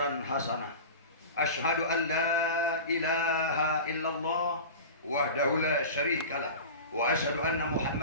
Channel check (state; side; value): inverted; both; correlation -0.32